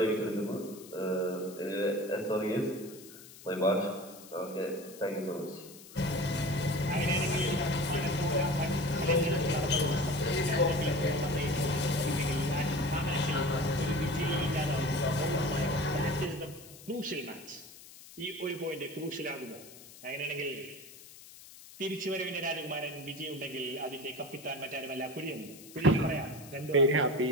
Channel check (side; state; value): left; noise; hiss, 18 dB below the sound